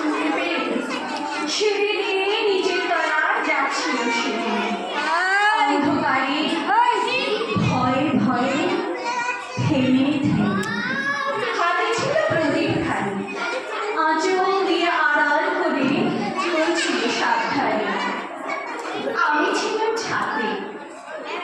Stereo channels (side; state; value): both; identical; correlation 1.00